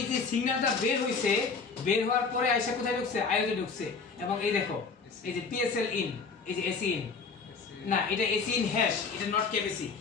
যে সিগন্যালটা বের হইছে বের হওয়ার পরে আইসা কোথায় ঢুকছে আইওতে ঢুকছে এবং এই দেখো এই যে PSL in এই যে AC in না এটা AC in হ্যাশ এটা নট কেবিসি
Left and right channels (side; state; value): right; quieter; 4.9 dB